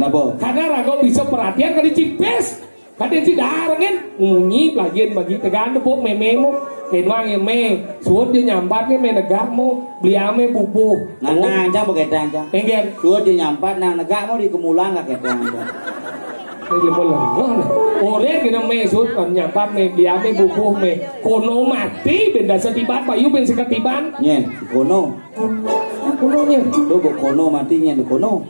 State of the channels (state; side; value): inverted; both; correlation -1.00